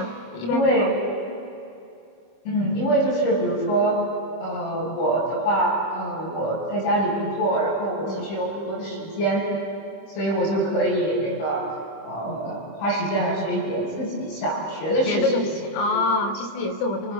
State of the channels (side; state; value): right; late; 25 ms